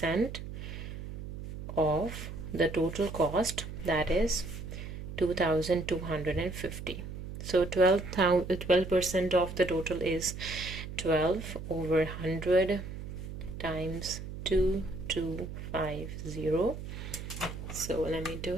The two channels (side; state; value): right; noise; hum, 9 dB below the sound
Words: of the total cost, that is 2,250. So 12% of the total is 12 over 100 times 2250. So let me do